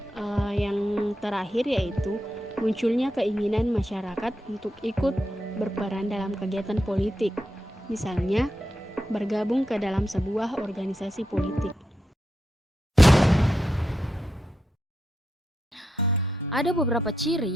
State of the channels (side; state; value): both; normal; correlation 0.85